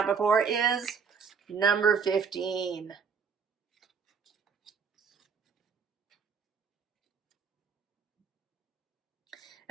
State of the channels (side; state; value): left; quieter; 6.1 dB